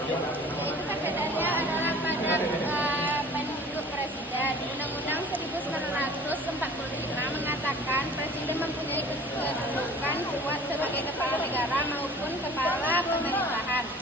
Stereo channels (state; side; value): normal; both; correlation 0.46